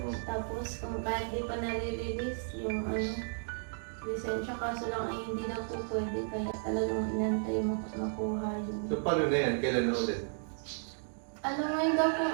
Tapos kung kahit di pa nare-release yung lisensya, kaso lang ay hindi daw po pwede. Kaya talagang inantay makuha yun. So paano na yan? Kailan na ulit? Ngayon daw po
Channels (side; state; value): left; silent; digital silence